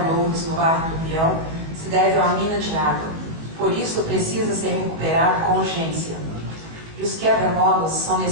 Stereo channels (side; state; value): left; late; 19 ms